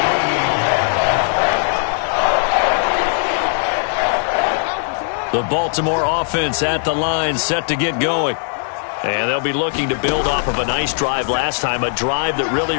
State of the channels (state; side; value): silent; right; digital silence